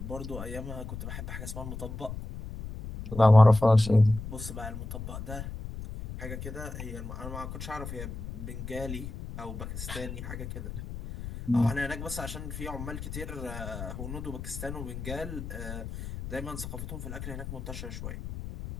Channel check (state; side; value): noise; left; rumble, 8 dB below the sound